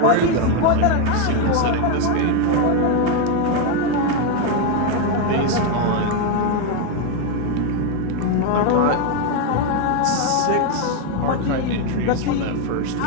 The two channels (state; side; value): different; both; correlation 0.01